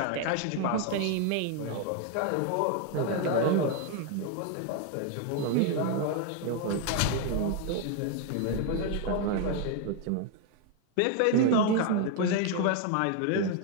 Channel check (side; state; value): both; different; correlation 0.01